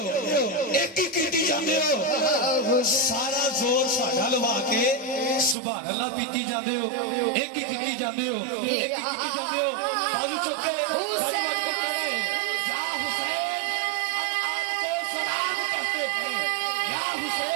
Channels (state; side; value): drops out; left; at 5.6 s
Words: एक ही की जाते हो। सारा जोर साडा लवा के सुभान अल्लाह पीती जाते हो, एक ही की जाते हो, एक ही की जाते हो। बाजू चुके